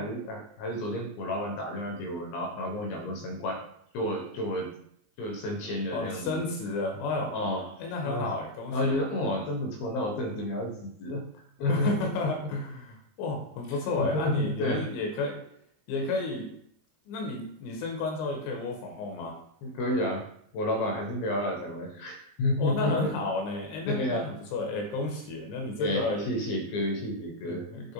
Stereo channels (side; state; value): right; late; 19 ms